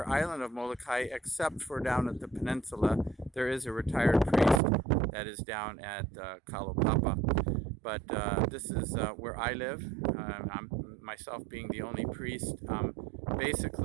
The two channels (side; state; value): left; drops out; at 4.6 s